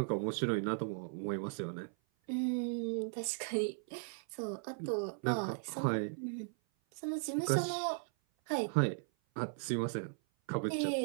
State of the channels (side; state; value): left; silent; 53 dB below the other